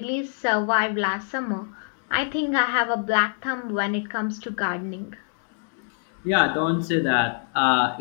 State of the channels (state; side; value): silent; right; 62 dB below the other